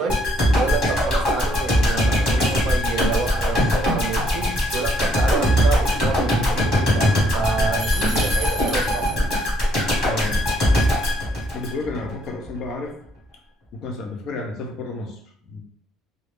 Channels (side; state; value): both; normal; correlation 0.70